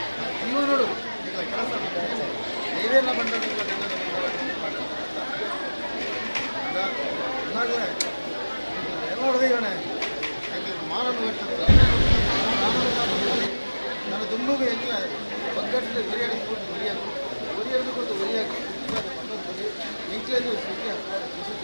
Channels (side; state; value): both; inverted; correlation -1.00